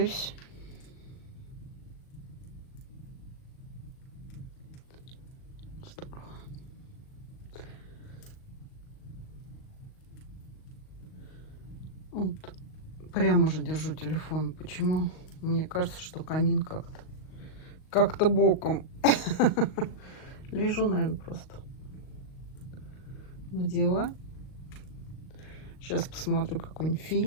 Вот. Прямо же держу телефон. Почему? Мне кажется, что камин как-то боком. Лежу, наверное, просто на диване. Сейчас посмотрю какой-нибудь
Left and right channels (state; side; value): late; right; 38 ms